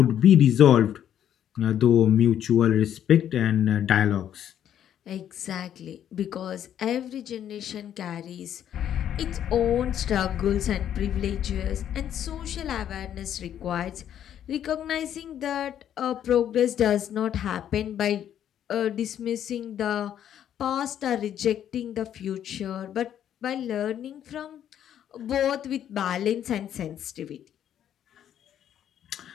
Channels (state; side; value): quieter; right; 10.1 dB